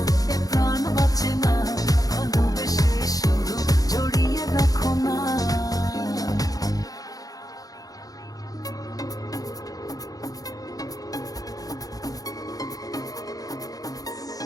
প্রাণ বাঁচে না, ভালোবেসে শুধু জড়িয়ে রাখো না।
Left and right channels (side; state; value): right; late; 0.18 ms